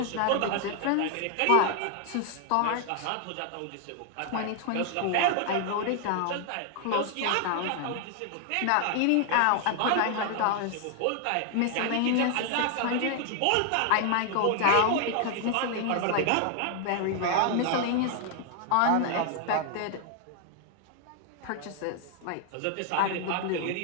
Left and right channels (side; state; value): both; different; correlation 0.00